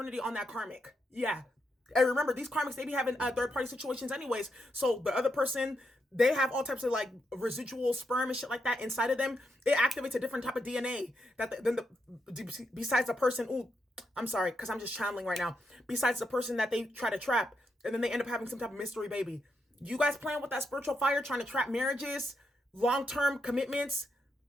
on that karmic. Yeah. And remember, these karmics, they be having third-party situations anyways. So the other person, they have all types of like residual sperm and shit like that inside of them. It activates a different type of DNA besides the person. Ooh, I'm sorry, because I'm just channeling right now. Besides the person that they try to trap, and then they end up having some type of mystery baby. You guys playing with that spiritual fire, trying to trap marriages, long-term commitments,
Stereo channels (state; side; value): normal; both; correlation 0.82